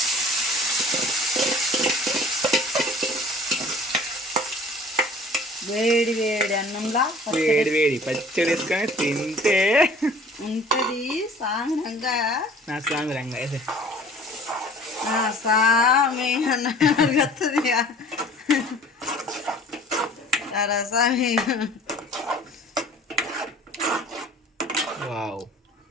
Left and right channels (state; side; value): normal; both; correlation 0.48